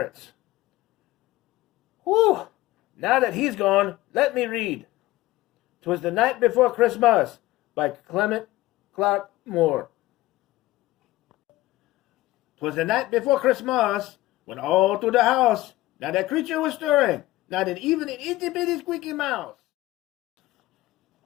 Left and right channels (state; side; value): quieter; right; 17.6 dB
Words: Whew! Now that he's gone, let me read. 'Twas the Night Before Christmas by Clement Clark Moore. 'Twas the night before Christmas, when all through the house not a creature was stirring, not even an itty-bitty squeaky mouse.